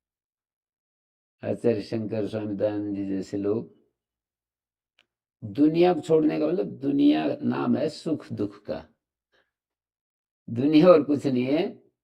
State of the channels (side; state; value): both; identical; correlation 1.00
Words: आचार्य शंकर स्वामी दयानंद जी जैसे लोग। दुनिया को छोड़ने का मतलब, दुनिया नाम है सुख दुख का, दुनिया और कुछ नहीं है,